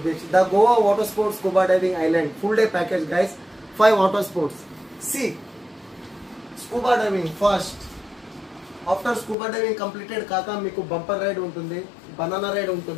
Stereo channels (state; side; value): drops out; right; at 9.3 s